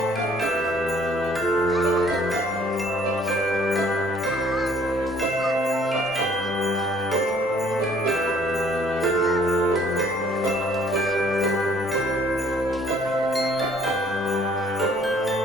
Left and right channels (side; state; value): both; normal; correlation 0.59